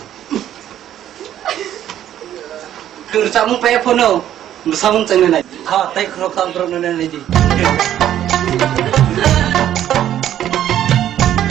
Kerjamu payah pono. Bersama cengen aja. Ha, tay kerok tampro nenen aja.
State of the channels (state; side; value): quieter; left; 11.4 dB